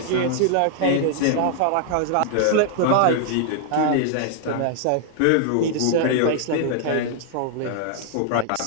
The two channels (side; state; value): both; different; correlation 0.00